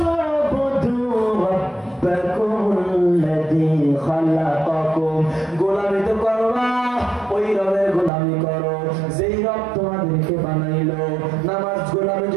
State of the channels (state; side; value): drops out; left; at 8.1 s